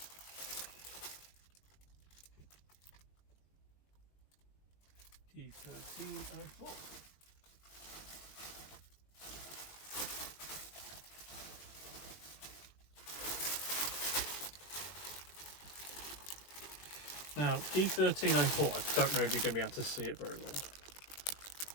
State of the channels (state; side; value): late; right; 21 ms